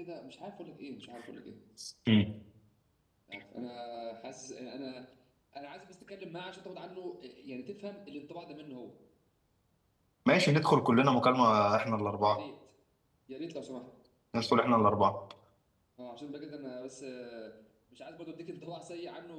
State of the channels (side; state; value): both; identical; correlation 1.00